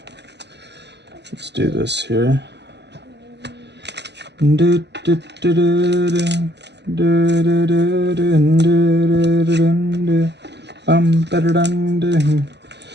let's do this here.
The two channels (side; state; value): left; late; 0.50 ms